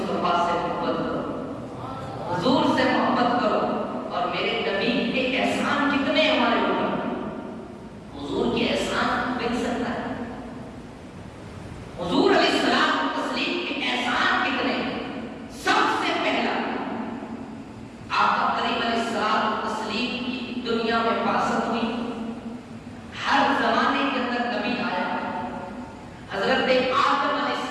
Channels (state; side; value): identical; both; correlation 1.00